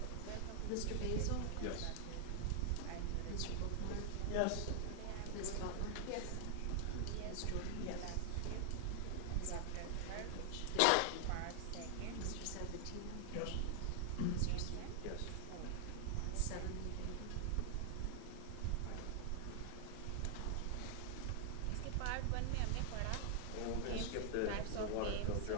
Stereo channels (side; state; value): both; different; correlation 0.00